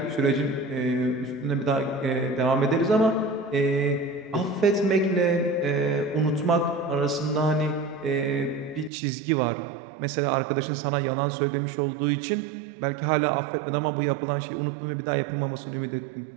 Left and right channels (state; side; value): drops out; left; at 8.9 s